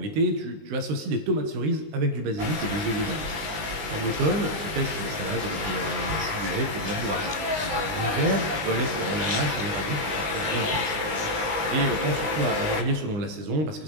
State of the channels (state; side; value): late; left; 19 ms